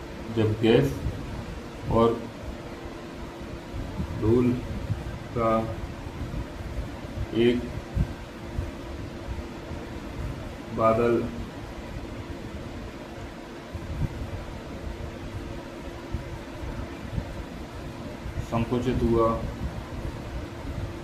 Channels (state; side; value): identical; both; correlation 1.00